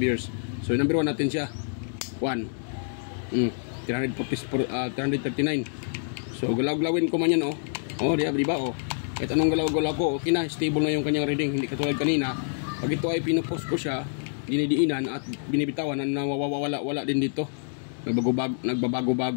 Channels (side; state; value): right; silent; digital silence